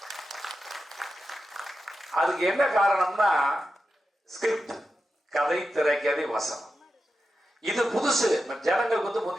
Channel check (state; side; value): normal; both; correlation 0.90